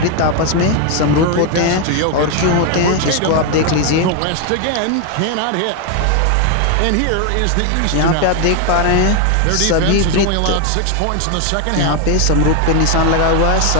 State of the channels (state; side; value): different; both; correlation 0.01